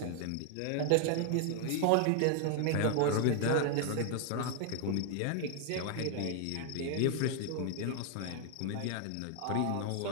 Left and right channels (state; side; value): different; both; correlation 0.00